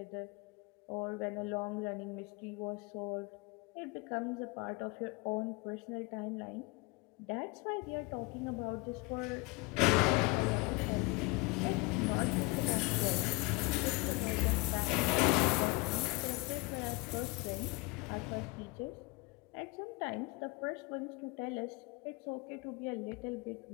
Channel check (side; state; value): right; quieter; 25.9 dB